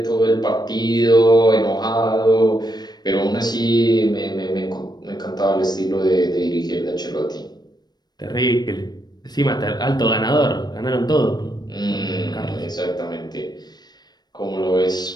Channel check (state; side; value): late; right; 0.20 ms